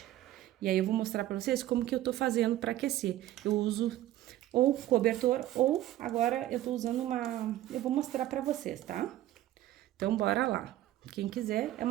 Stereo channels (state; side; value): quieter; left; 14.1 dB